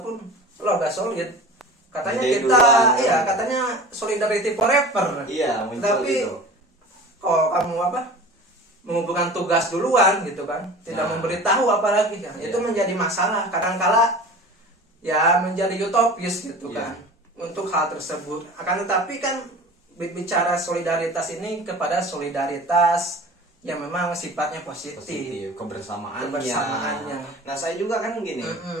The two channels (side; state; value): both; normal; correlation 0.38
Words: lo gak solid. Katanya katanya solidarity forever. Iya, tapi gitu. Kalau kamu mengumpulkan tugas duluan gitu kan, tidak memberitahu apalagi kan, itu menjadi masalah. Kadang-kala ya menjadi utopis gitu kan untuk hal tersebut. Akan tetapi kan bicara solidaritas ini kepada solidaritas yang memang sifatnya positif, kebersamaannya. Nah, saya juga kan gini,